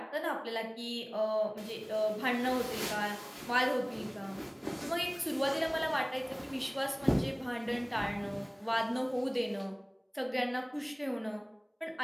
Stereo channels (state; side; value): identical; both; correlation 1.00